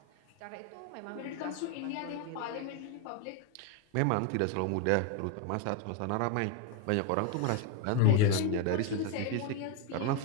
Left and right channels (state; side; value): different; both; correlation 0.01